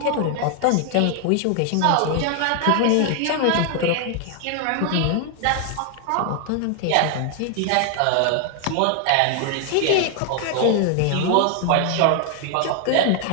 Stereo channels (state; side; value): different; both; correlation 0.00